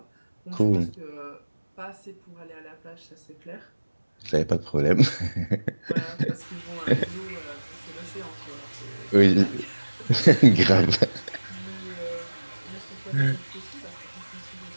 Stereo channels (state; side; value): inverted; both; correlation -1.00